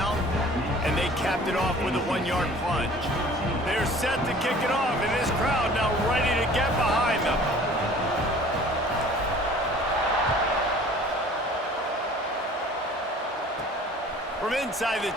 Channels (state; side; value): normal; both; correlation 0.48